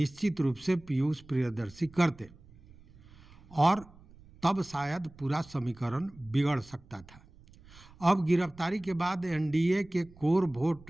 रूप से पीयूष प्रियदर्शी करते और तब शायद पूरा समीकरण बिगड़ सकता था। अब गिरफ्तारी के बाद एनडीए के कोर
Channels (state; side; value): noise; right; rumble, 23 dB below the sound